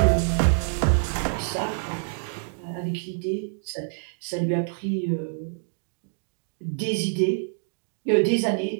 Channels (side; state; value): left; silent; digital silence